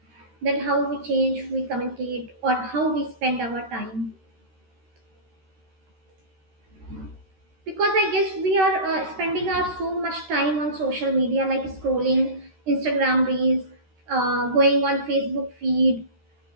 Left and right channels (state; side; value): late; left; 13 ms